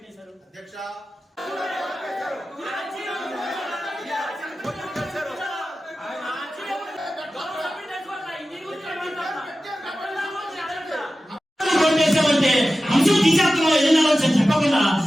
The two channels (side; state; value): both; normal; correlation 0.94